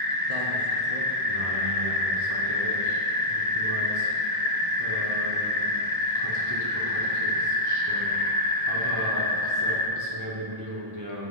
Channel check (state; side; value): late; left; 1.0 ms